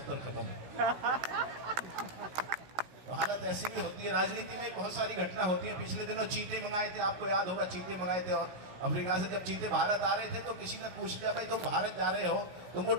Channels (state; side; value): late; left; 16 ms